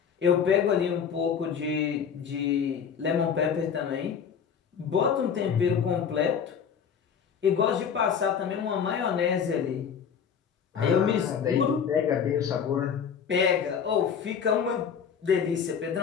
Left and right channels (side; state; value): right; quieter; 7.2 dB